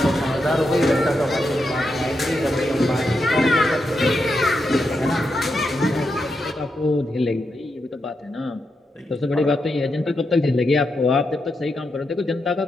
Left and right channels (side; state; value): both; normal; correlation 0.85